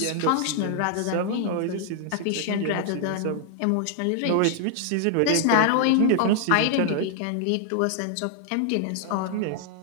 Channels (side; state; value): both; different; correlation 0.00